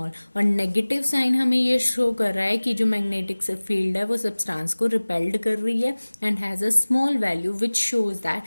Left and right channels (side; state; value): both; inverted; correlation -1.00